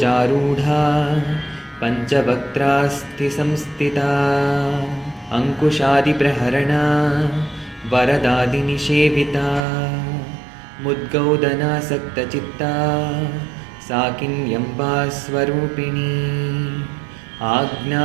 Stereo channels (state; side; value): drops out; left; at 9.7 s